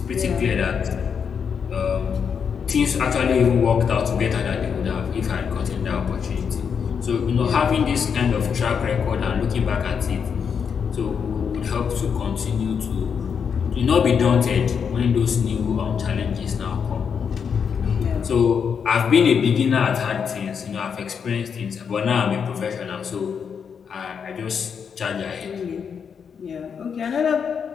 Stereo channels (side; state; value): right; quieter; 6.8 dB